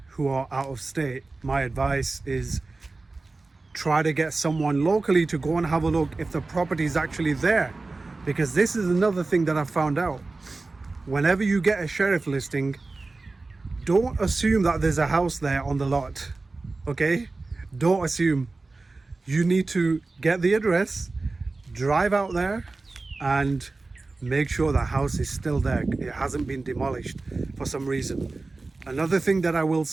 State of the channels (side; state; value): left; quieter; 3.5 dB